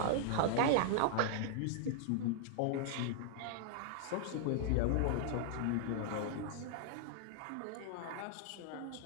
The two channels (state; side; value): different; both; correlation -0.01